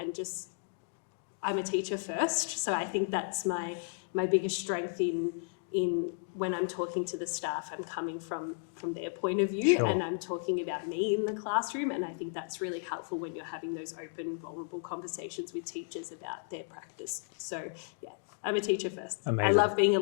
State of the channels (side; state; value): right; silent; digital silence